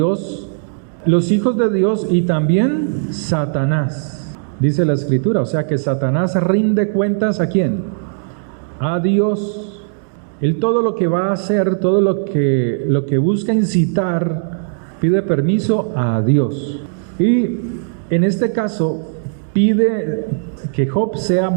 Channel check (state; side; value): silent; left; digital silence